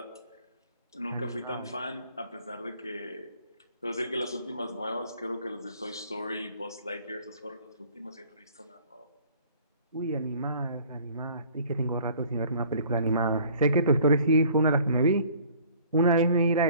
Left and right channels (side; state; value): both; inverted; correlation -0.53